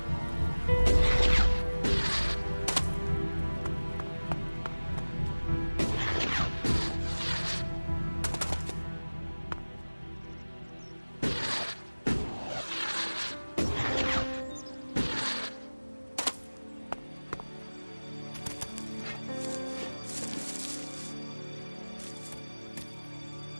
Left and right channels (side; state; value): both; inverted; correlation -1.00